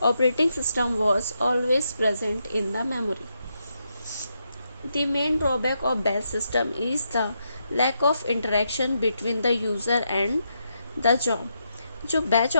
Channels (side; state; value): both; inverted; correlation -0.82